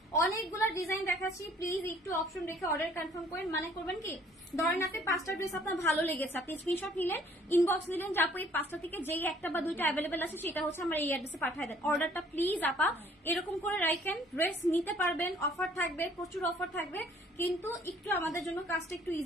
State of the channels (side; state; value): both; normal; correlation 0.58